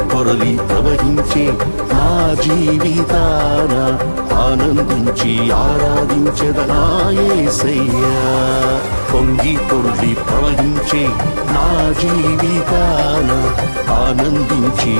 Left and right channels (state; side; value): inverted; both; correlation -1.00